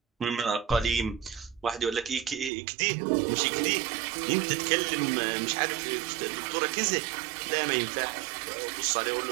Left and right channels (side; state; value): left; drops out; at 2.5 s